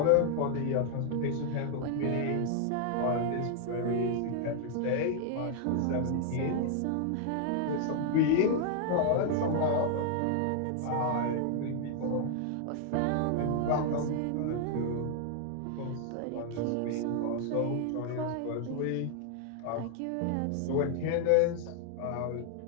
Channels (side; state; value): both; different; correlation 0.00